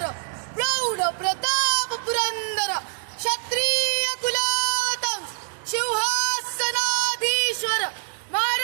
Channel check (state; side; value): silent; left; digital silence